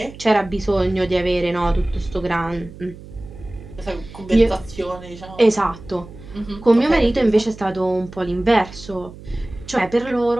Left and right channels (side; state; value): right; noise; hum, 17 dB below the sound